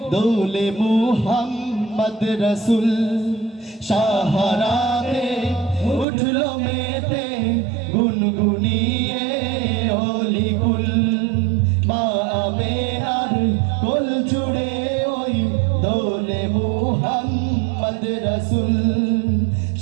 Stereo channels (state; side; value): drops out; left; at 6.1 s